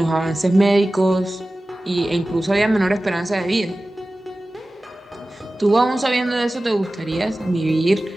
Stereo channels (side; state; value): both; normal; correlation 0.96